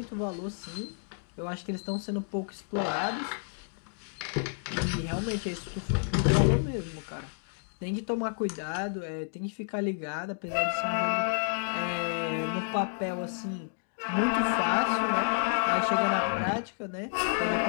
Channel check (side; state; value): right; silent; digital silence